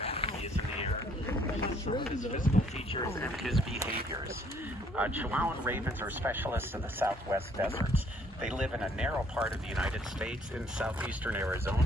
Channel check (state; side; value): normal; both; correlation 0.63